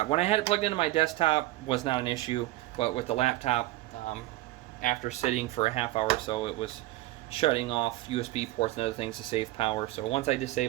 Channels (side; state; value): left; quieter; 17.1 dB